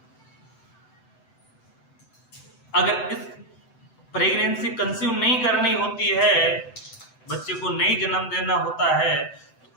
अगर इस प्रेगनेंसी कंज्यूम नहीं करनी होती है, बच्चे को नहीं जन्म देना होता है,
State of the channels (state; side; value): late; right; 7.8 ms